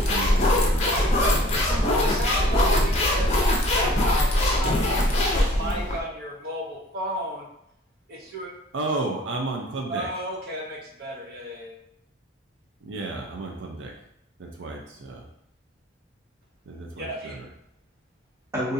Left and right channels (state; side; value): normal; both; correlation 0.52